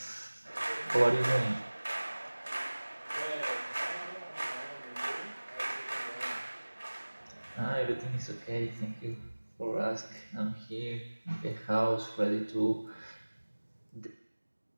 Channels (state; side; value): inverted; both; correlation -1.00